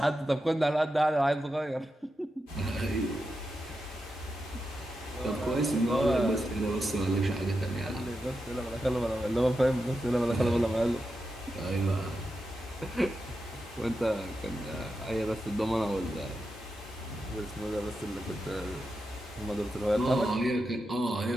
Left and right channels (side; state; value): both; normal; correlation 0.88